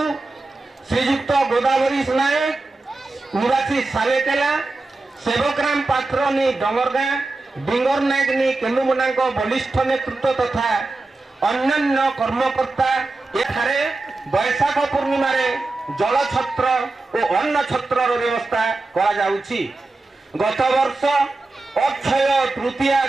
श्रीयुक्त गोदावरी नायक निवासी सालेकेला सेवकराम पात्र नी डंगरगा डिंगर नायक नी केन्दुमुड़ा बलिष्ठ नेतृत्व तथा अन्य कर्मकर्ता एठारे बैशाख पूर्णिमा जल छत्र और अन्न छत्र व्यवस्था करा जाउछि। गत वर्ष अक्षय तृतीया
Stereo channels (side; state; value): left; quieter; 3.2 dB